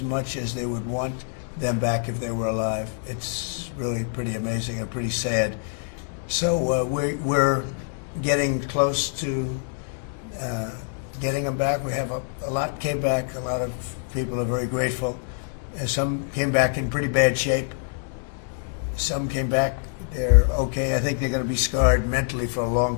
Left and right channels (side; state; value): right; silent; digital silence